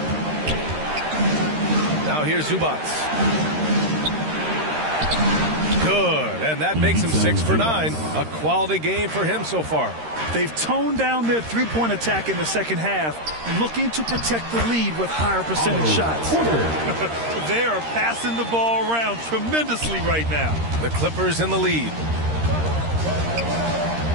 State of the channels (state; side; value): late; left; 13 ms